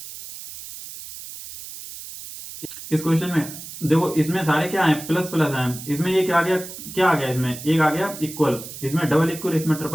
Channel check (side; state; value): right; noise; hiss, 12 dB below the sound